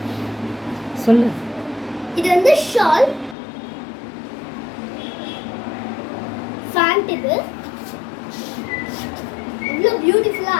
சொல்லு. இது வந்து ஷால் ஃபேண்ட். இவ்வளோ பியூட்டிஃபுல்லா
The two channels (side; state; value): right; drops out; at 3.4 s